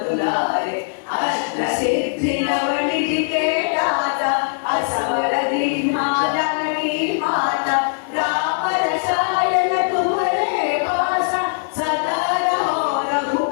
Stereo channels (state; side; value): silent; right; digital silence